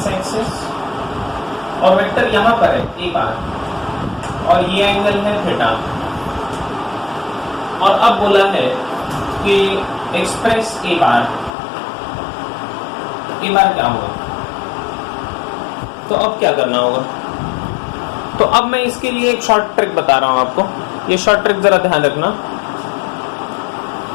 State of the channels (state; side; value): drops out; right; at 11.5 s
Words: एक्सिस, और वेक्टर यहां पर है a बार, और ये एंगल है थीटा। और अब बोला है कि एक्सप्रेस a बार क्या होगा? तो अब क्या करना होगा? तो अब मैं इसके लिए एक शॉर्ट ट्रिक बता रहा हूं आपको। ये शॉर्ट ट्रिक जरा ध्यान रखना।